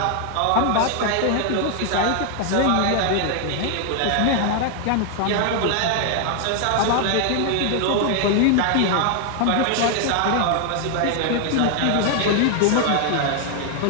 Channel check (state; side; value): different; both; correlation 0.00